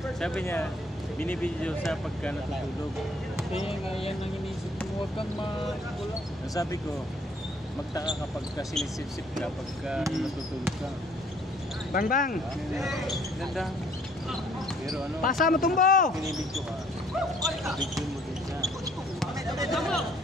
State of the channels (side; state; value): both; normal; correlation 0.61